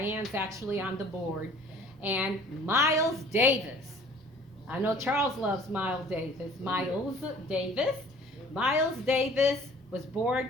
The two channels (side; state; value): both; normal; correlation 0.51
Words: actually on the board. And Miles Davis. I know Charles loves Miles Davis. Miles Davis. Miles Davis was born